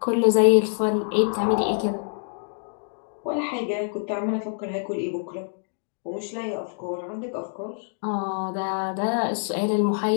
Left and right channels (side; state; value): right; silent; digital silence